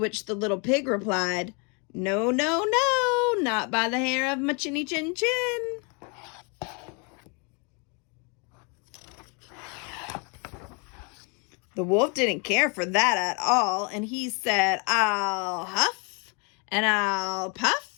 the little pig replied, "No, no, no, not by the hair of my chinny chin chin." The wolf didn't care for that at all, and he said, "I'll huff and I'll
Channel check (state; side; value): quieter; right; 33.8 dB